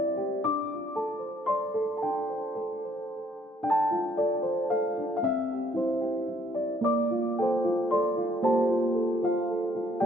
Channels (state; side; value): normal; both; correlation 0.65